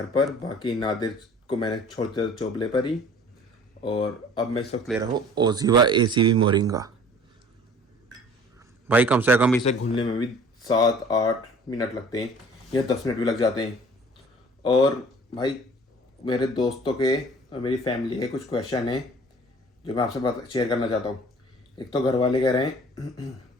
पर। बाकी नादिर को मैंने छोड़ दिया चोपले पर ही। और अब मैं इस वक्त ले रहा हूँ ओजीवा एसीवी मोरिंगा। भाई कम से कम इसे घुलने में भी 7-8 मिनट लगते हैं या 10 मिनट भी लग जाते हैं। और भाई मेरे दोस्तों के और मेरी फैमिली के कुछ क्वेश्चन हैं जो मैं आपसे शेयर करना चाहता हूँ। एक तो घर वाले कह रहे हैं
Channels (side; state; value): both; normal; correlation 0.49